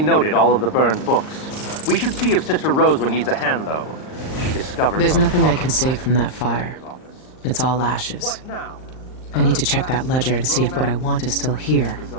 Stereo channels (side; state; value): right; late; 39 ms